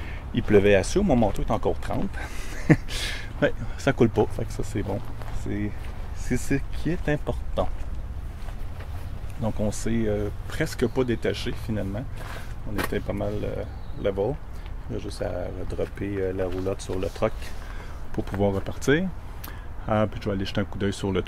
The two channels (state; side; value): identical; both; correlation 1.00